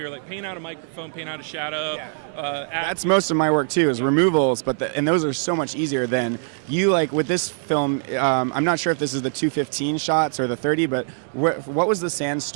were paint out a microphone, paint out a shadow. That's most of my work too, is removals. And those are so much easier than you with this film. I'm not sure if this is the 215 shots or the 30, but what was the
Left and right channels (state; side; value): silent; left; digital silence